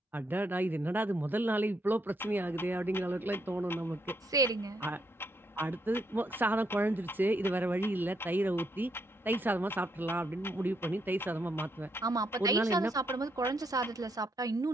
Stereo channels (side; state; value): both; normal; correlation 0.76